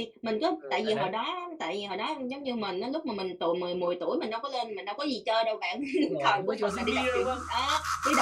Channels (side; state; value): both; identical; correlation 1.00